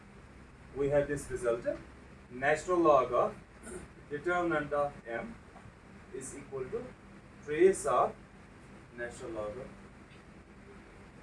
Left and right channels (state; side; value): identical; both; correlation 1.00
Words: we have this result, natural log of determinant of M is equal to trace of natural log of.